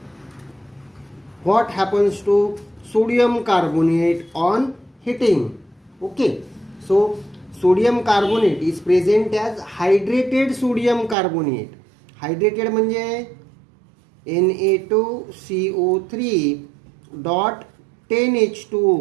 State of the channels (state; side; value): drops out; left; at 11.2 s